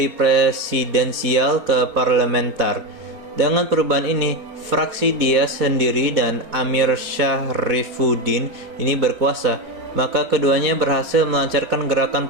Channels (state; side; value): late; left; 4.4 ms